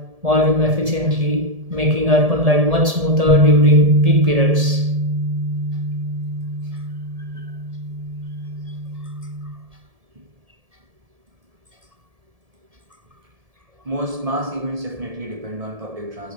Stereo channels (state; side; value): late; left; 1.7 ms